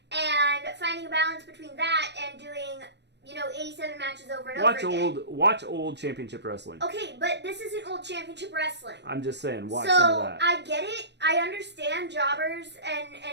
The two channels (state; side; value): late; left; 0.50 ms